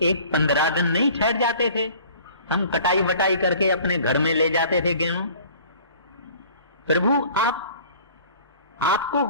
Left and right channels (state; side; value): inverted; both; correlation -0.49